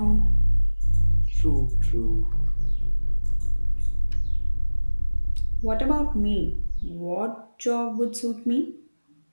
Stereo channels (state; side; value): inverted; both; correlation -1.00